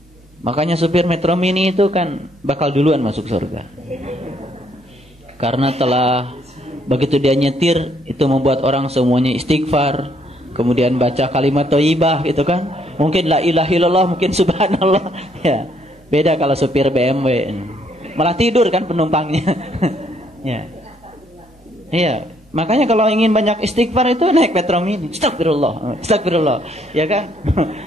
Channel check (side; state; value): both; normal; correlation 0.69